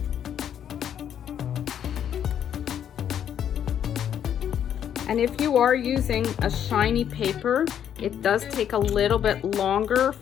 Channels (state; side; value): quieter; right; 9.4 dB